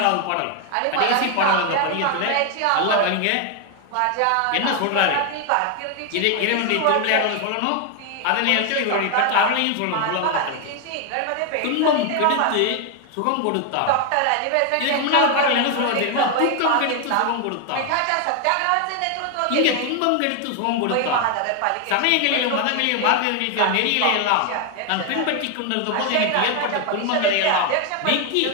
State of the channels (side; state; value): both; different; correlation 0.01